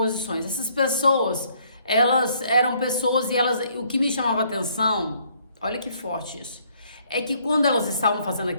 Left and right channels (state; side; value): inverted; both; correlation -0.66